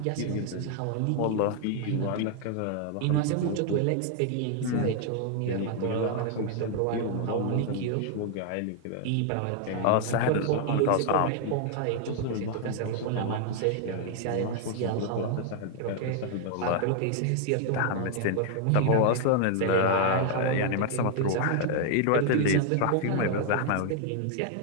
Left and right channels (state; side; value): different; both; correlation 0.00